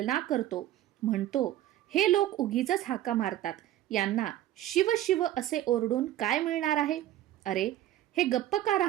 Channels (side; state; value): left; quieter; 13.3 dB